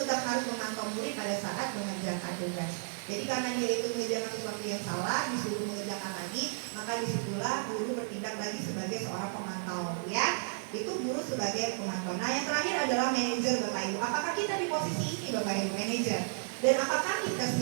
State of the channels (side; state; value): left; silent; digital silence